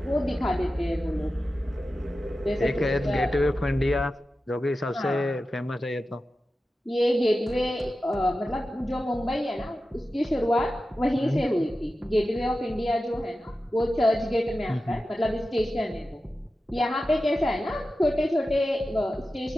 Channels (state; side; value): normal; both; correlation 0.93